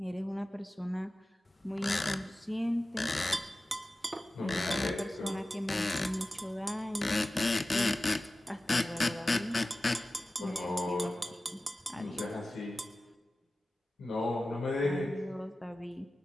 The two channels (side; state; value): both; normal; correlation 0.96